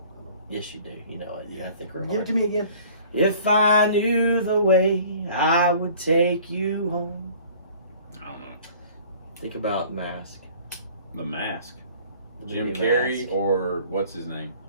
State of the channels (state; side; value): inverted; both; correlation -0.50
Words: Yes, you do. You know it. Yeah, I think we're Give it to me again. If I knew the way, I would take you home. I don't know. Think about Mask. The Mask. The Jim movie Carrey Mask. or what's his name?